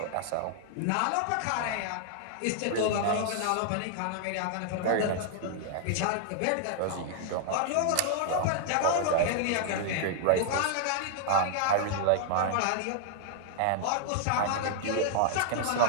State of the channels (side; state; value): both; different; correlation -0.01